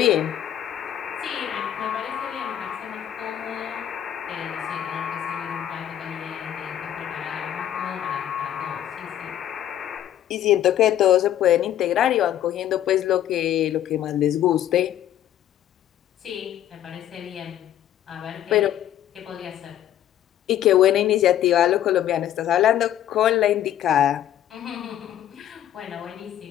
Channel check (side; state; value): right; quieter; 11.4 dB